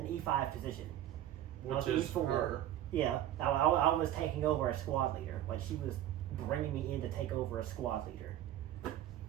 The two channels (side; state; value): left; quieter; 12.4 dB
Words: E5 position, Which is E4. her. Yeah, I was taking over a squad leader. Like she was bringing me in to take over a squad leader.